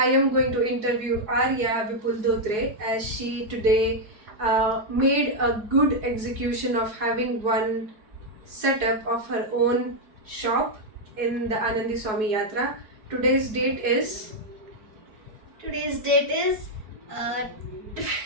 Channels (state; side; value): late; left; 4.7 ms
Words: am going to interview Arya Vipul Dhotre as she today made a good execution of having one setup of her own shop in the Anandi Swami Yatra. Today's date is Today's date is uh,